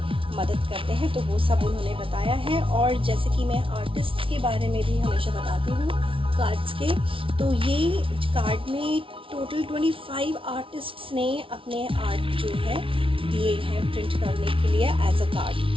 मदद करते हैं, तो वो सब उन्होंने बताया है। और जैसे कि मैं आर्टिस्ट्स के बारे में भी हमेशा बताती हूँ कार्ड्स के, तो ये कार्ड में टोटल 25 आर्टिस्ट्स ने अपने आर्ट जो है दिए हैं प्रिंट करने के लिए एज अ कार्ड।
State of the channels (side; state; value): left; late; 0.25 ms